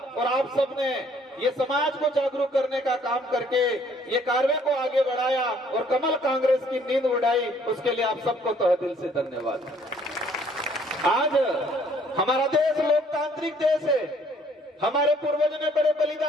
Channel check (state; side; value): normal; both; correlation 0.61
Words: और आप सबने ये समाज को जागरूक करने का काम करके ये कार्य को आगे बढ़ाया और कमल कांग्रेस की नींद उड़ाई। उसके लिए आप सबको तहे दिल से धन्यवाद। आज हमारा देश लोकतांत्रिक देश है। हमारे पूर्वजों ने बड़े